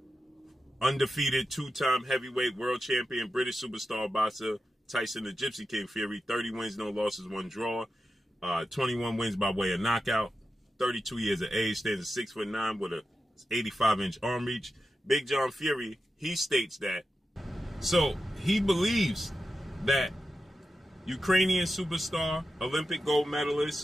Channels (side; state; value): both; normal; correlation 0.90